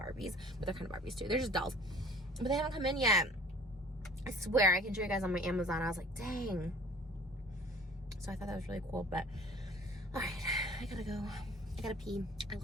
but they're kind of Barbies too. They're just dolls. But they haven't come in yet. I swear, I can show you guys on my Amazon. I was like, dang. So I thought that was really cool, but all right, I gotta go. I gotta pee. I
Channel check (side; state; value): both; normal; correlation 0.48